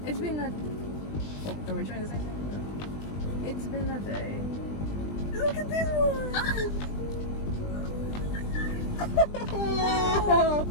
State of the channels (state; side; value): late; right; 20 ms